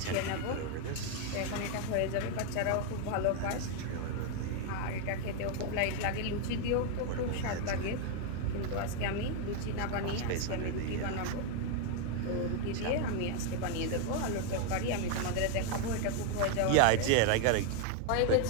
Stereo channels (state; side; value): different; both; correlation 0.01